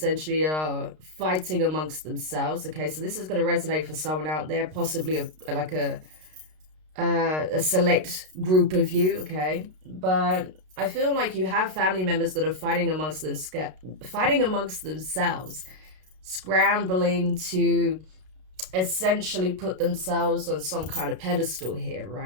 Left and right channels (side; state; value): left; late; 32 ms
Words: are fighting amongst themselves. Okay, so this is going to resonate for someone out there, possibly a select group of you. Okay, but I feel like you have family members that are fighting amongst themselves, scrambling to essentially put themselves on some kind of pedestal here,